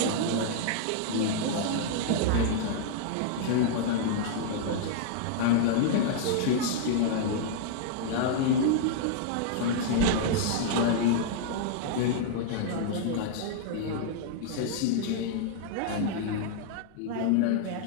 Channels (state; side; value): different; both; correlation -0.01